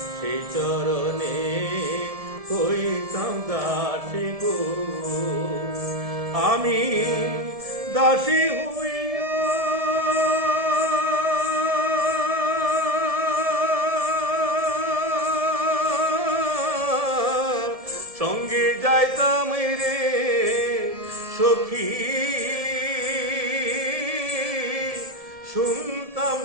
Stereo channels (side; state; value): left; late; 1.7 ms